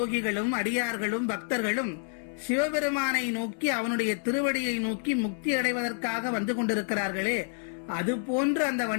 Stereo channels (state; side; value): silent; right; 59 dB below the other